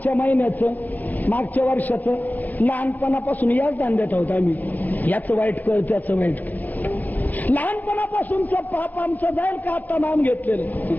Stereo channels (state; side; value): late; right; 0.082 ms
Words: महिन्याचं, मागच्या वर्षाचं, लहानपणापासून याच धांद्यात आहोत आम्ही. याचं वाईट कर, त्याचं वाईट कर. लहानपणापासूनचं पाप आमचं जाईल का आता नाम घेतलेलं?